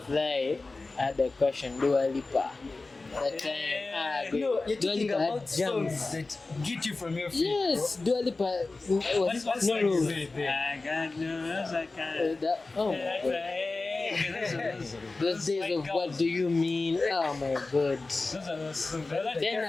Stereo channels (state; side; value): quieter; right; 3.5 dB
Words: Lie, I had a question, Dua Lipa. That time, Yeah. No, you're Dua talking Lipa had about jams. songs that get you from your feet. Yes, Dua Lipa was What's no like rules. this? I got no, I can't. Oh my God. Those days of what do you mean? Oh my God. Those are those songs.